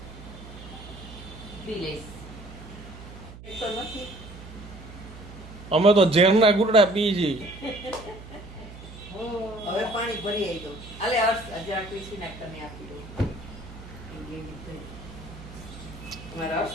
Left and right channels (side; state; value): right; noise; hum, 15 dB below the sound